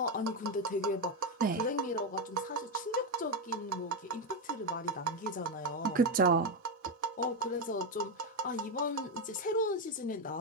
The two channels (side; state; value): both; normal; correlation 0.09